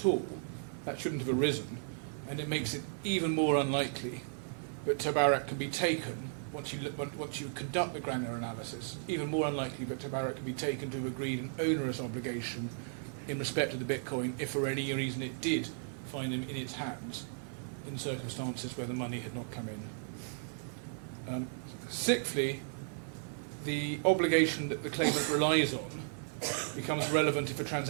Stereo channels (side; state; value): left; silent; 54 dB below the other